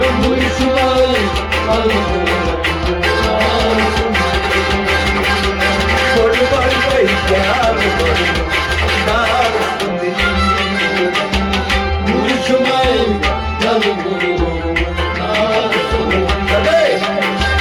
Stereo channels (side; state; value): both; identical; correlation 1.00